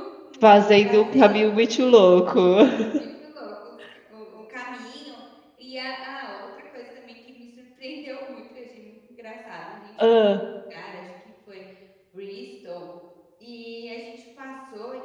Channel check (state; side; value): identical; both; correlation 1.00